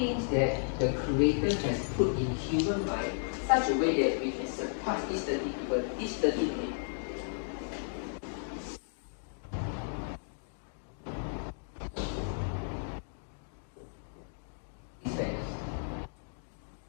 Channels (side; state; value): right; silent; digital silence